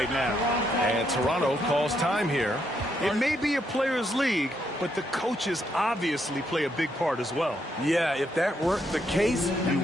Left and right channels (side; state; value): both; normal; correlation 0.76